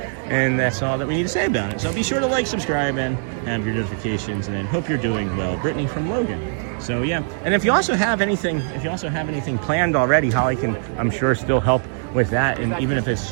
and that's all that we need to say about it. So be sure to like, subscribe, and have your notifications, and then hope you're doing well. Brittany from Logan. So yeah, and if you also have anything planned already, Holly can, I'm sure, still help with that, and even if it's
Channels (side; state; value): left; silent; digital silence